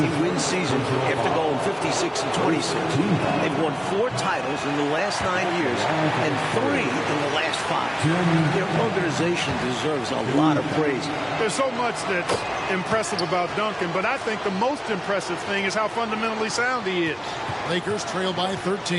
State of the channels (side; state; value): both; identical; correlation 1.00